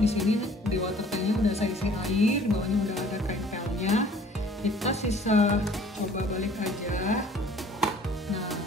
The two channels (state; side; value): normal; both; correlation 0.53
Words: di sini di water tanknya udah saya isi air, bawahnya udah ada kain pelnya. Kita sisa coba balik aja. Nah,